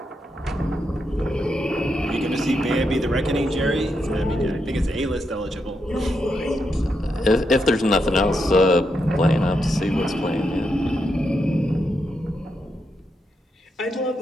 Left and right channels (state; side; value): normal; both; correlation 0.83